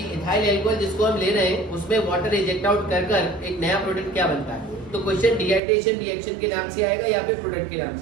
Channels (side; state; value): left; drops out; at 5.6 s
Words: इथाइल एल्कोहल जिसको हम ले रहे हैं उसमें वाटर रिजेक्ट आउट कर कर एक नया प्रोडक्ट क्या बनता है। तो क्वेश्चन डिहाइड्रेशन रिएक्शन के नाम से आएगा या फिर प्रोडक्ट के नाम